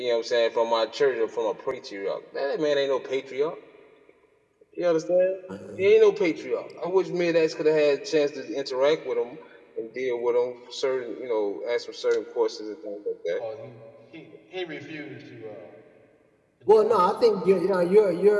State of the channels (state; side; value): identical; both; correlation 1.00